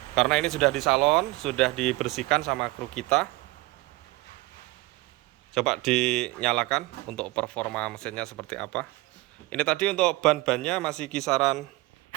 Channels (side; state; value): left; quieter; 20.7 dB